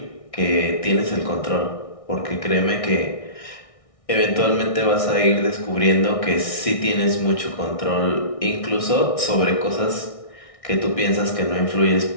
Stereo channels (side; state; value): right; late; 1.6 ms